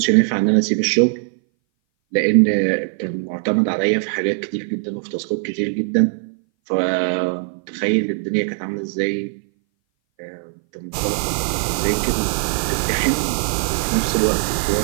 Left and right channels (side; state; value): left; silent; 60 dB below the other